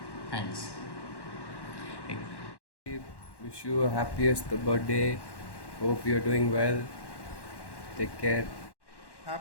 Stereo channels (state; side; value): late; right; 1.1 ms